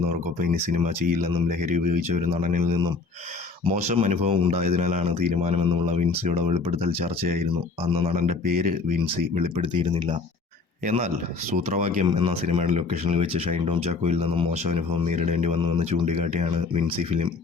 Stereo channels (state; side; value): quieter; right; 4.2 dB